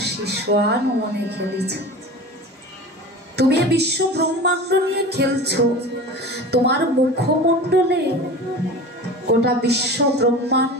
শিশোয়ান মনে খেলিছ। তুমি এ বিশ্ব ব্রহ্মাণ্ড নিয়ে খেলছো, তোমার মুখমণ্ডলে গোটা বিশ্ব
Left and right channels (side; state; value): both; normal; correlation 0.34